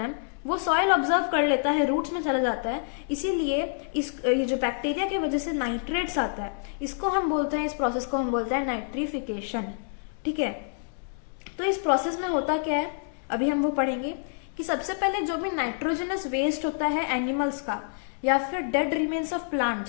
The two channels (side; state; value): right; silent; digital silence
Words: वो सॉइल ऑब्जर्व कर लेता है, रूट्स में चला जाता है, इसीलिए ये जो बैक्टीरिया की वजह से नाइट्रेट्स आता है इसको हम बोलते हैं, इस प्रोसेस को हम बोलते हैं नाइट्रिफिकेशन, ठीक है। तो इस प्रोसेस में होता क्या है अभी हम वो पढ़ेंगे कि सबसे पहले जो भी नाइट्रोजनस वेस्ट होता है एनिमल्स का या फिर डेड रिमेन्स ऑफ